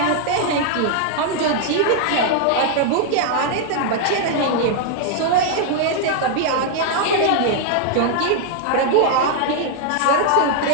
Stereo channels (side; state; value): both; different; correlation -0.01